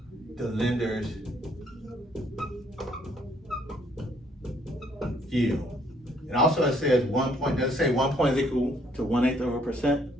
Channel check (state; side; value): normal; both; correlation 0.66